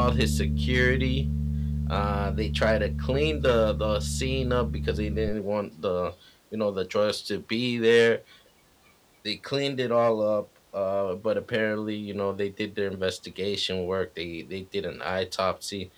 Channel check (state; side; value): identical; both; correlation 1.00